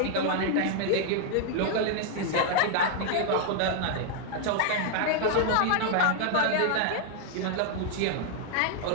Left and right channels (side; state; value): both; different; correlation 0.00